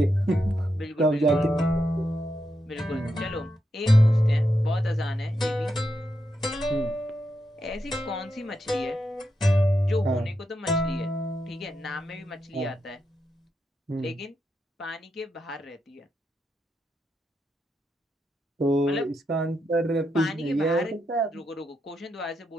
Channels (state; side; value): normal; both; correlation 0.84